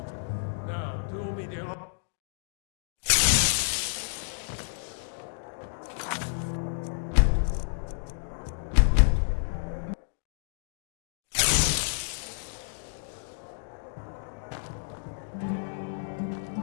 Now, do me the honor.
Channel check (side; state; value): right; silent; digital silence